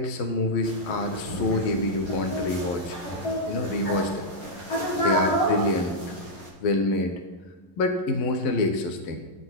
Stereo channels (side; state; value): right; late; 11 ms